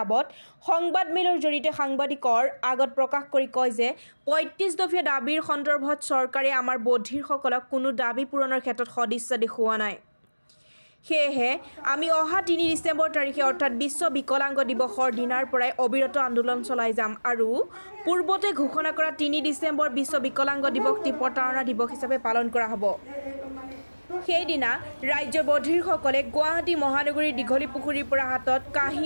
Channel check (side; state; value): both; inverted; correlation -1.00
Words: সংবাদমেলৰ জৰিয়তে সাংবাদিকৰ আগত প্ৰকাশ কৰি কয় যে ৩৫ দফীয়া দাবীৰ সন্দৰ্ভত চৰকাৰে আমাৰ বধিৰসকলক কোনো দাবী পূৰণৰ ক্ষেত্ৰত সদিচ্ছা দেখুওৱা নাই। সেয়েহে আমি অহা ৩ ডিচেম্বৰ তাৰিখে অৰ্থাৎ বিশ্ব বিকলাংগ দিৱসৰ দিনাৰ পৰাই অবিৰত আন্দোলন চলাই যাম আৰু পূৰ্বতে ঘোষণা কৰা ৩ ডিচেম্বৰ বিশ্ব বিকলাংগ দিৱসটি প্ৰতাৰণা দিৱস হিচাপে পালন কৰা হ'ব। সেইদিনা ৰাজ্যৰ বধিৰসকলে গুৱাহাটী মহানগৰীৰ দীঘলী পুখুৰীৰ পৰা হাতত কাঁহী